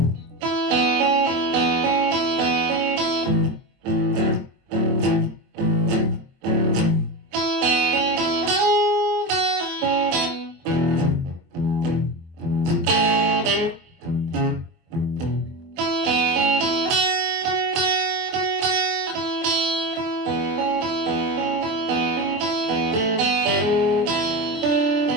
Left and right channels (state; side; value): late; left; 23 ms